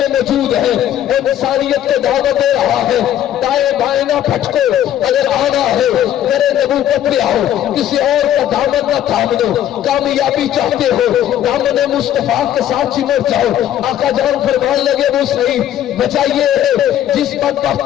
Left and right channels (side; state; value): right; quieter; 11.3 dB